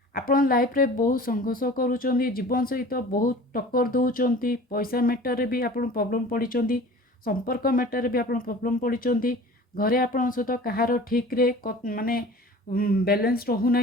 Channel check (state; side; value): normal; both; correlation 0.42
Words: आपण लाइफ रे बहुत संघर्ष करूँ जीवन सहित बहुत टक्कर दौरान पैसा मैटर भी आप प्रॉब्लम पड़ी संपर्क मैटर भी आप प्रॉब्लम पड़ी घरे आपण सहित कहार ठीक रे माने बैलेंस रहूना